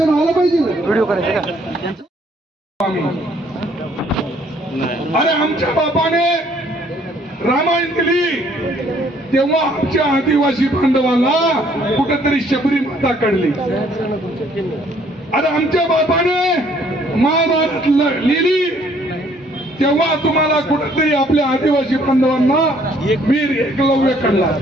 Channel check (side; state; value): both; normal; correlation 0.63